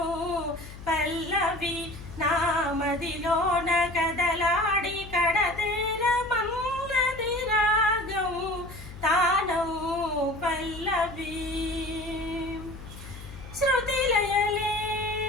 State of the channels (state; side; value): noise; left; hum, 14 dB below the sound